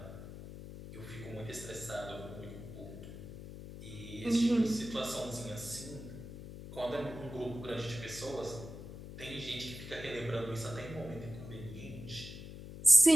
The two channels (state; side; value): noise; left; hum, 12 dB below the sound